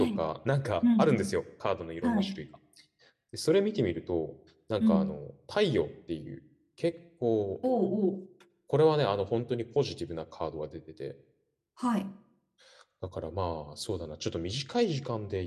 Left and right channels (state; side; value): identical; both; correlation 1.00